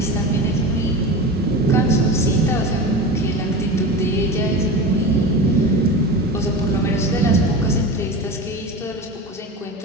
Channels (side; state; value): both; normal; correlation 0.28